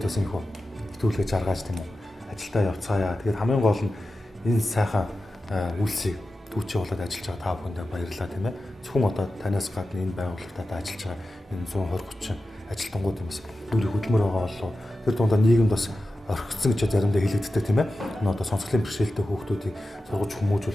бас энэ итгүүлгээ жаргаж тийм үү. Ажилдаа явцгаая. Тэгээд хамгийн гол нь энэ сайхан үйлсийг түүчээ болоод ажиллаж байгаа та бүхэндээ баярлалаа тийм ээ. Зөвхөн одоо танаас гадна энэ байгууллагад ажиллаж байгаа энэ 120-30 ажилтнууд юмс нүрийг хөдөлмөр байгаа болов. Тэр дундаа нийгэмд бас орхигдсон гэж заримдаа хэлэгддэг тийм ээ. Энэ одоо сонсголын бэрхшээлтэй хүүхдүүдийг сургуулж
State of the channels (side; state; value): both; normal; correlation 0.93